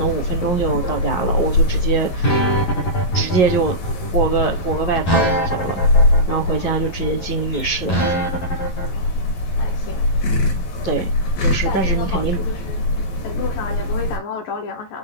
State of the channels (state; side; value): late; right; 11 ms